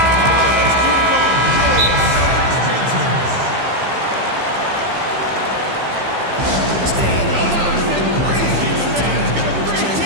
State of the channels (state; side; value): late; left; 15 ms